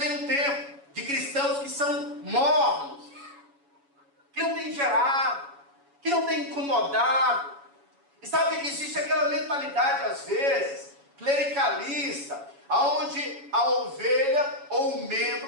um tempo de cristãos que são mornos, que não têm gerado, que não têm incomodado. E sabe que existe aquela mentalidade, às vezes, clericalista, onde a ovelha ou o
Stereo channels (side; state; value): left; late; 7.1 ms